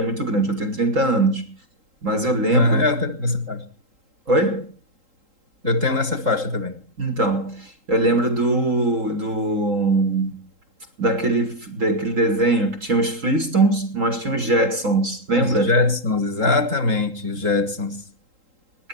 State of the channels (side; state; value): left; late; 3.8 ms